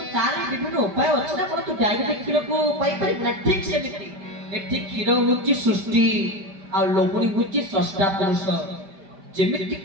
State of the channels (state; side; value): late; left; 5.1 ms